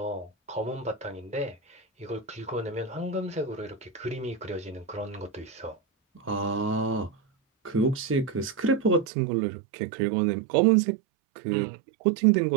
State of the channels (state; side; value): drops out; left; at 9.1 s